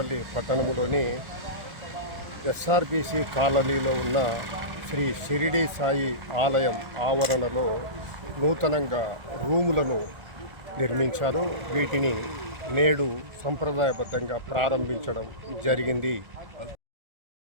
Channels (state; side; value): late; left; 1.4 ms